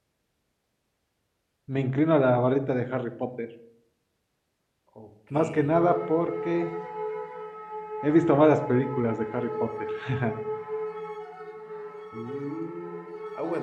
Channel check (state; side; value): identical; both; correlation 1.00